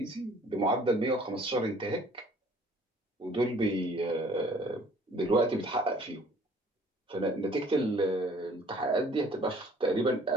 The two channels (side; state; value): both; normal; correlation 0.56